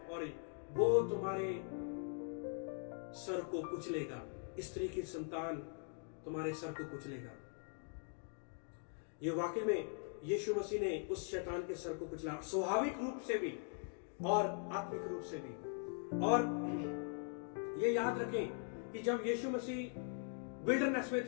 और वो तुम्हारे सर को कुचलेगा। स्त्री की संतान तुम्हारे सर को कुचलेगा। ये वाकई में यीशु मसीह ने उस शैतान के सर को कुचला, स्वाभाविक रूप से भी और आत्मिक रूप से भी। और ये याद रखें कि जब यीशु मसीह विल्डरनेस में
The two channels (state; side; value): silent; right; 50 dB below the other